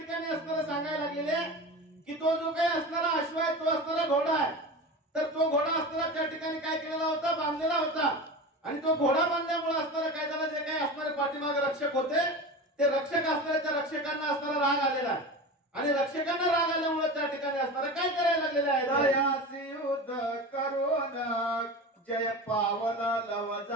असणारं सांगायला लागलेले की तो जो काही असणारा अश्व आहे तो असणारा घोडा आहे तर तो घोडा असणारा त्या ठिकाणी काय केलेला होता बांधलेला होता आणि तो घोडा बांधल्यामुळे असणारा काय झालं जे काही असणारे पाठीमागे रक्षक होते ते रक्षक असणारे त्या रक्षकांना असणारा राग आलेला आहे आणि रक्षकांना राग आल्यामुळे त्या ठिकाणी असणारा काय करायला लागलेलं आहे दयासी युद्ध करून जय पावला लव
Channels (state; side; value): normal; both; correlation 0.29